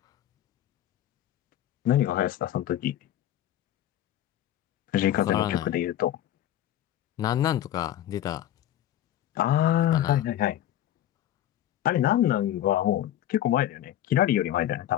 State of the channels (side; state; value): right; quieter; 12.3 dB